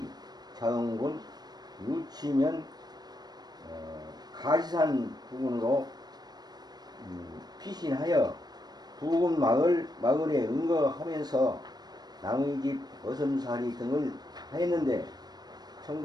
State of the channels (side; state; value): left; late; 0.19 ms